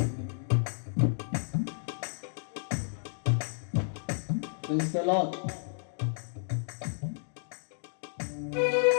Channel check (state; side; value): silent; right; digital silence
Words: Praise the Lord.